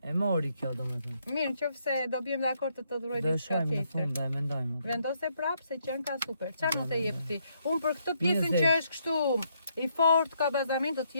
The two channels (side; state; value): both; inverted; correlation -0.74